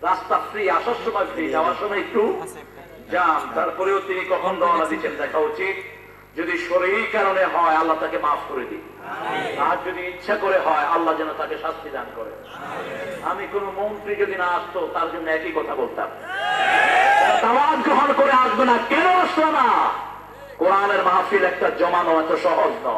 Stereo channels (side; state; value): both; identical; correlation 1.00